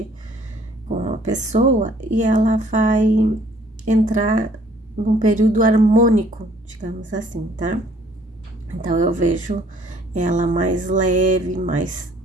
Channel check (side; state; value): both; normal; correlation 0.60